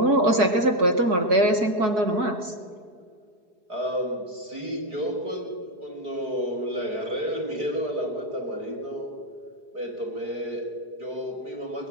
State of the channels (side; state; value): left; late; 4.7 ms